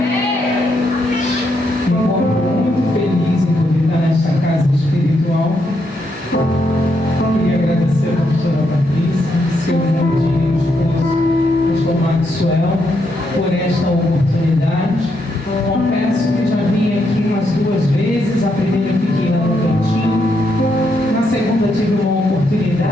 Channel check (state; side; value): normal; both; correlation 0.79